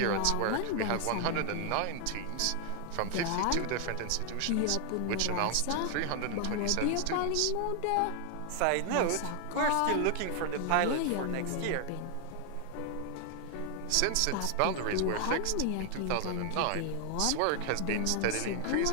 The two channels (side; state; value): both; different; correlation 0.00